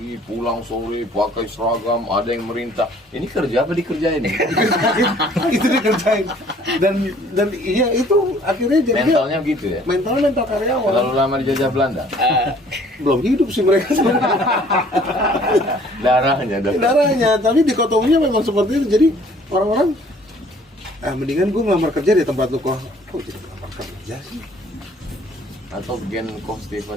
pulang sore, pakai seragam, ada yang merintah. Ini kerja apa dikerjain? Itu dikerjain. Dan iya itu akhirnya jadi Mentalnya gitu ya. mental karyawan. Terlalu lama dijajah Belanda. Belum hidup sih mereka sebenarnya. Darahnya, tapi dikotominya memang seperti itu. Jadi orang-orang mendingan gue ngelamar kerja di tempat lu. Kok jadi ngelamar kerja sih? Atau gen Coach Stephen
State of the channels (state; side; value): normal; both; correlation 0.56